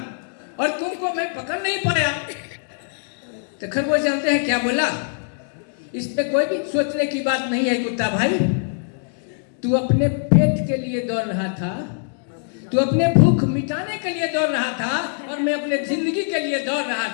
और तुमको मैं पकड़ नहीं पाया। तो खरगोश जानते हैं क्या बोला, इसमें कोई भी सोचने की बात नहीं है कुत्ता भाई, तू अपने पेट के लिए दौड़ रहा था, तू अपने भूख मिटाने के लिए दौड़ रहा था, और मैं अपने जिंदगी के लिए दौड़ रहा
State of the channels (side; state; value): right; silent; digital silence